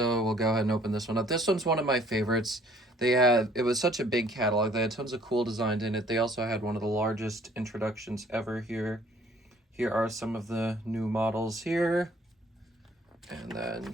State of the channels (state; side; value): normal; both; correlation 0.58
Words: we'll go ahead and open this one up. This one's one of my favorites. It was such a big catalog. They had tons of cool designs in it. They also had one of the largest introductions ever here. Here are some of the new models here. And